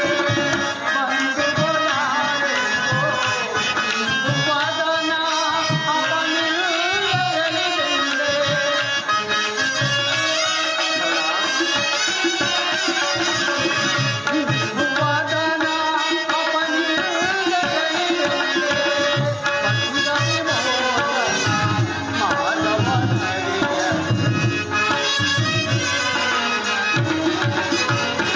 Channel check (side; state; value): both; identical; correlation 1.00